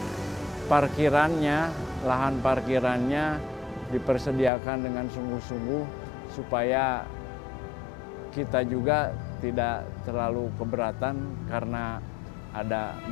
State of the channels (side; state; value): right; drops out; at 4.5 s